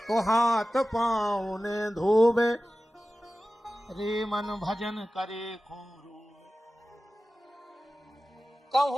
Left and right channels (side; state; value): both; normal; correlation 0.96